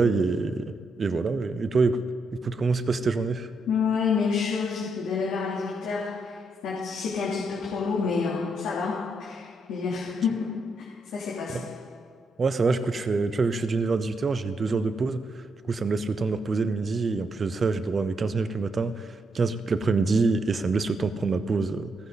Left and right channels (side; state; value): both; normal; correlation 0.79